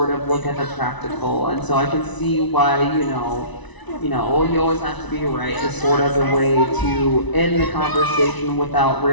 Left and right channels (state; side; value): late; right; 1.0 ms